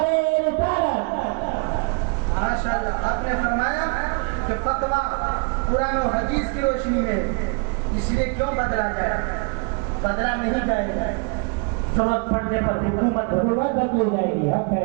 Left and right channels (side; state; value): left; quieter; 33.2 dB